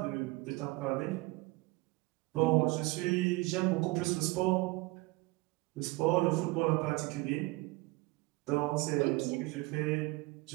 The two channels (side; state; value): left; quieter; 22.9 dB